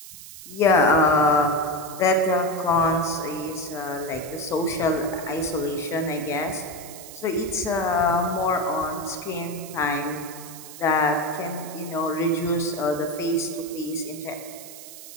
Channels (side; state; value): right; noise; hiss, 15 dB below the sound